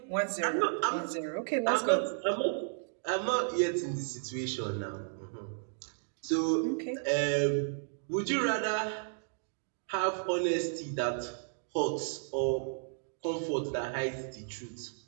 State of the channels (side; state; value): left; silent; digital silence